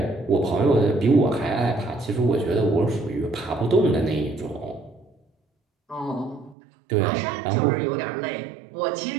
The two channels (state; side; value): drops out; left; at 6.6 s